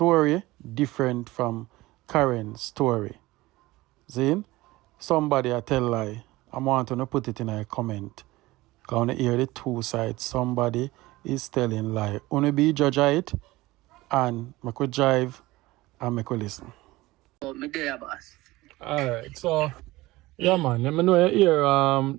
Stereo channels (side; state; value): left; quieter; 19.2 dB